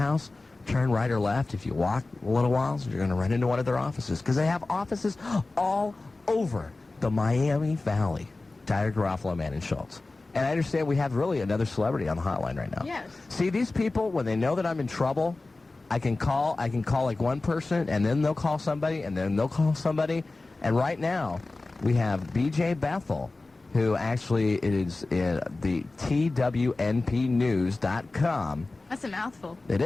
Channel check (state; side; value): quieter; right; 3.3 dB